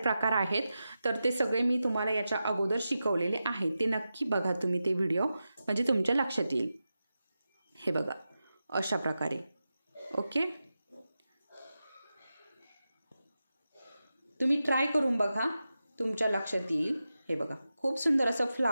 आहेत तर ते सगळे मी तुम्हाला याच्या अगोदर शिकवलेले आहे. ते नक्की बघा तुम्ही ते व्हिडिओ म्हणजे तुमच्या लक्षात येईल. हे बघा अशा प्रकारे. ओके, तुम्ही ट्राय करून बघा तुमच्या लक्षात येईल. हे बघा खूप सुंदर असं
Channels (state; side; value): inverted; both; correlation -0.91